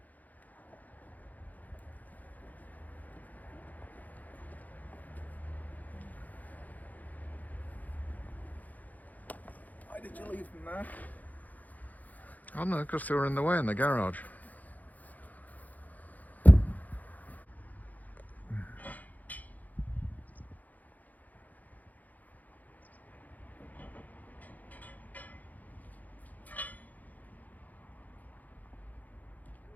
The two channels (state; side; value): late; right; 0.080 ms